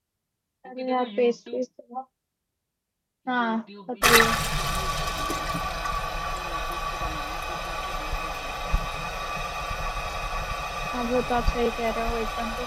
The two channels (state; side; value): identical; both; correlation 1.00